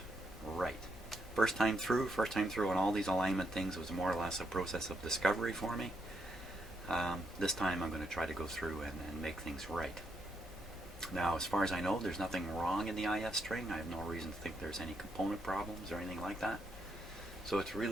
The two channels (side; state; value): both; normal; correlation 0.78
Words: right. First time through on all these alignment things was more or less a process of discovery for me. This time I'm going to try to go through and make things right. Now, as far as I know, there's nothing wrong in the IF string. I have no reason to think there's any component problems or anything like that. So it's